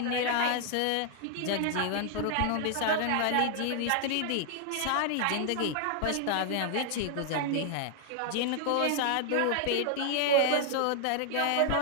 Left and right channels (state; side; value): different; both; correlation 0.00